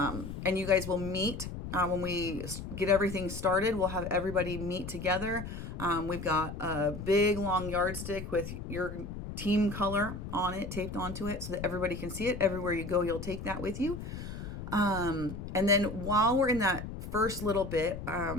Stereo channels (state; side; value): noise; left; rumble, 8 dB below the sound